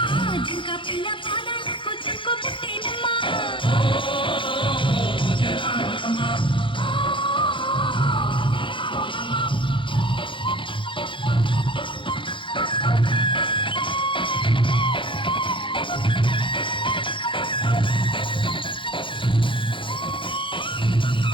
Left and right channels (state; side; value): late; right; 0.24 ms